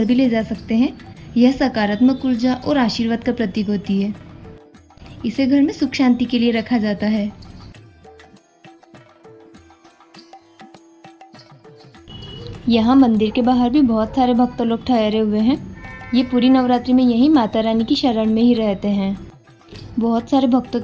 भी ले जा सकते हैं। यह सकारात्मक ऊर्जा और आशीर्वाद का प्रतीक होती है। इसे घर में सुख शांति के लिए रखा जाता है। यहाँ मंदिर के बाहर भी बहुत सारे भक्त लोग ठहरे हुए हैं। ये पूरी नवरात्रि में यहीं माता रानी की शरण में ही रहते हैं। बहुत सारे भक्तों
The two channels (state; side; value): identical; both; correlation 1.00